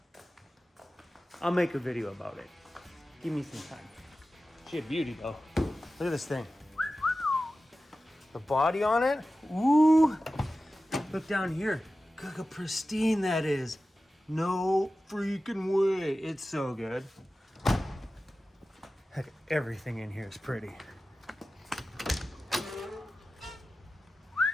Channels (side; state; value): both; normal; correlation 0.95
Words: I'll make a video about it. Give me some time. She a beauty though. Look at this thing. The body on it. Ooh. Look down here. Look how pristine that is. No freaking way. It's so good. Heck, everything in here is pretty.